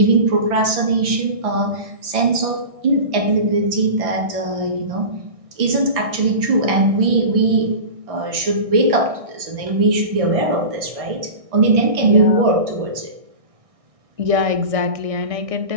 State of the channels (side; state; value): left; late; 1.6 ms